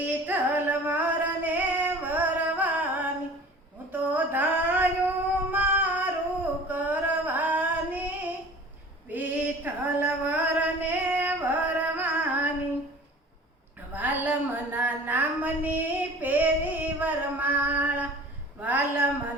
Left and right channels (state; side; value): normal; both; correlation 0.43